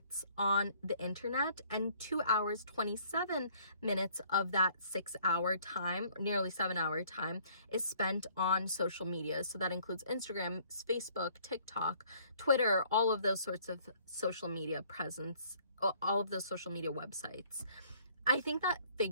on the internet, and 2 hours, 27 minutes of that 6 hour time, nearly 7 hour time, is spent on social media. So that includes Instagram, Facebook, TikTok, Twitter, all of those sorts of social media presence, all of those social media websites. I think that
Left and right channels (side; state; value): both; inverted; correlation -0.59